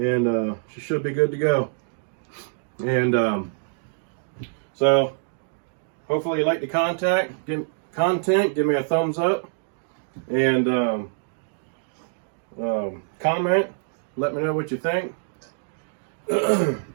she should be good to go. And so, hopefully you like the content. Give me a thumbs up, and comment. Let me know what you think.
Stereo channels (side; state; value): left; silent; digital silence